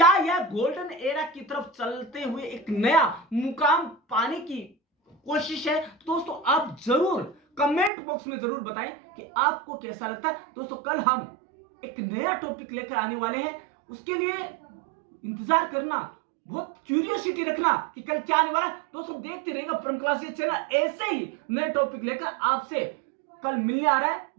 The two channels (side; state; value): left; drops out; at 7.9 s